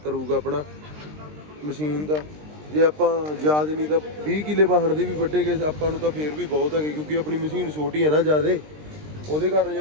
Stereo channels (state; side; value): late; left; 20 ms